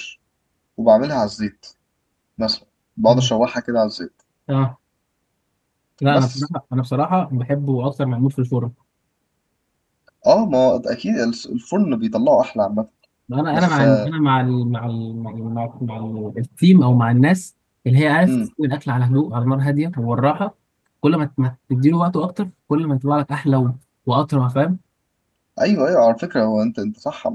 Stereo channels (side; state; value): both; identical; correlation 1.00